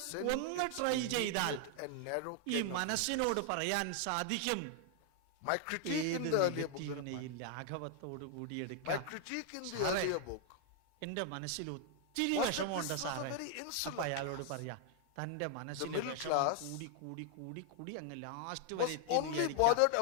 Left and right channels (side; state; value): both; different; correlation 0.00